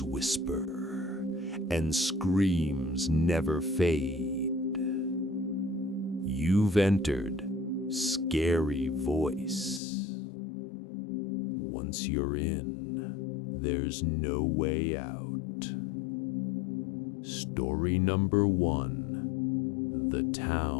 whisper and screams never fade. You've entered Scary Voice. Once you're in, there's no way out. Story number 1, The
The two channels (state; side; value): drops out; right; at 9.8 s